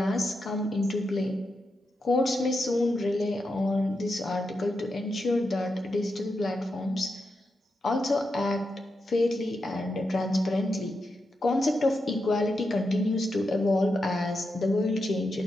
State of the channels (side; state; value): both; normal; correlation 0.86